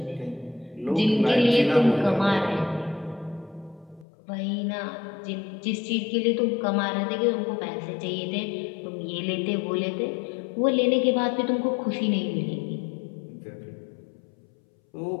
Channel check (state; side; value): drops out; right; at 4.0 s